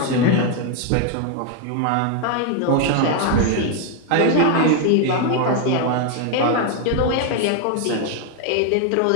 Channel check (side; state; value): both; different; correlation 0.01